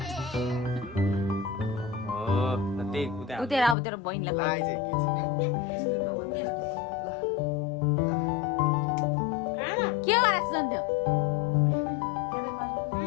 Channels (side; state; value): right; drops out; at 3.8 s